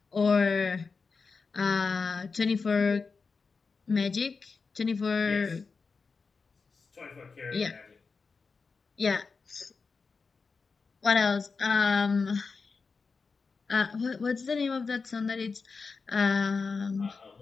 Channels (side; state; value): right; quieter; 4.7 dB